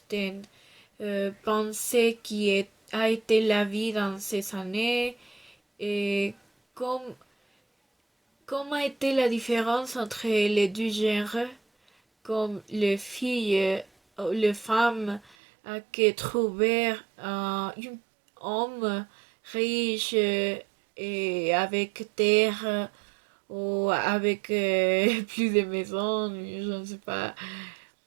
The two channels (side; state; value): left; drops out; at 15.4 s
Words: pensait a été la vie dans ces années et comme, comme a été la différence entre les deux genres, comme les filles ou les femmes qui trouvaient un homme riche et avec terre ou avec plus de maisons, je ne sais pas,